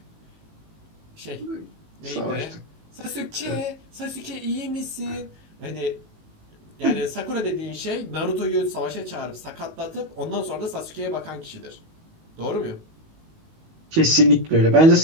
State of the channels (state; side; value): late; left; 19 ms